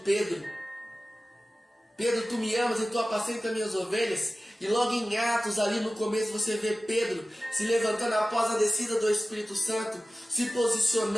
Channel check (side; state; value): both; normal; correlation 0.96